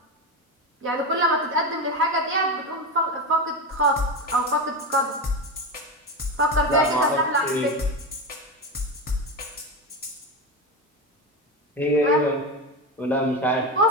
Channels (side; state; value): both; normal; correlation 0.18